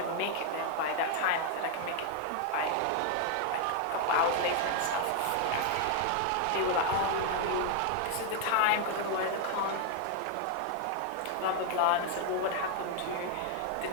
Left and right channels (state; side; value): different; both; correlation 0.00